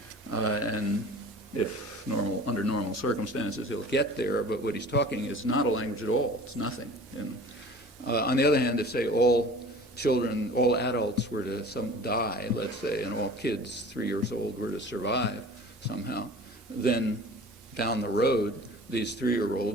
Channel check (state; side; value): normal; both; correlation 0.43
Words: And if under normal circumstances, he'll get there, but what he's talking is not a language at all. It's nothing. On the other hand, if, say, all children, all adults were to die, let's say, and all kids 3 years old were to survive somehow, then down the road, these